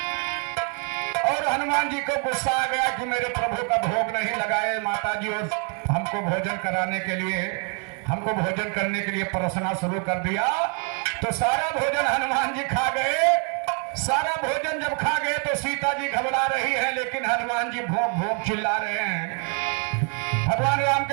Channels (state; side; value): quieter; left; 39.1 dB